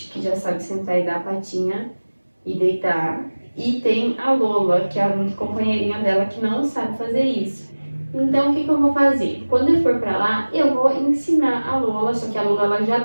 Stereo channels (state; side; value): inverted; both; correlation -1.00